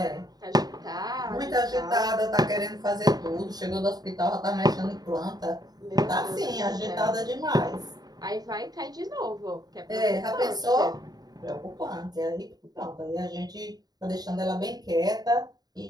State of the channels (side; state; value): left; late; 0.19 ms